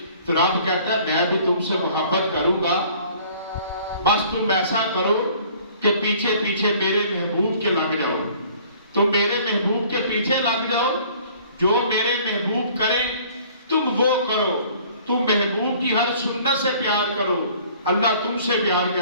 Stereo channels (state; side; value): inverted; both; correlation -0.53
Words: تو رب کہتا ہے میں بھی تم سے محبت کروں گا، بس تم ایسا کرو کہ پیچھے پیچھے میرے محبوب کے لگ جاؤ، تم میرے محبوب کے پیچھے لگ جاؤ، جو میرے محبوب کریں تم وہ کرو، تم محبوب کی ہر سنت سے پیار کرو، اللہ تم سے پیار